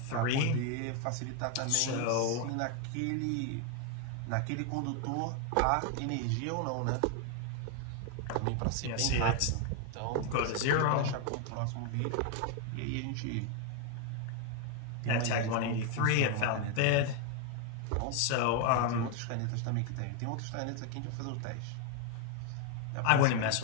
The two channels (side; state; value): both; different; correlation 0.01